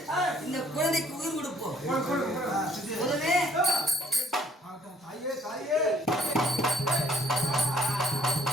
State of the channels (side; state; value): both; normal; correlation 0.60